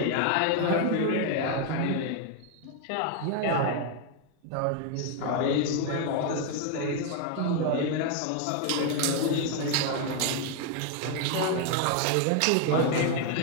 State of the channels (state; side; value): different; both; correlation 0.01